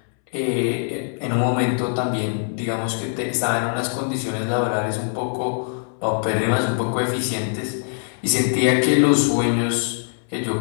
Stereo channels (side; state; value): right; silent; 64 dB below the other